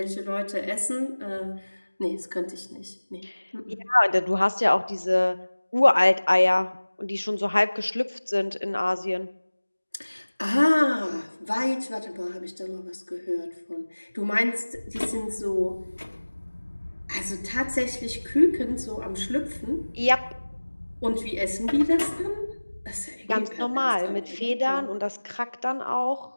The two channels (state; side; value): inverted; both; correlation -1.00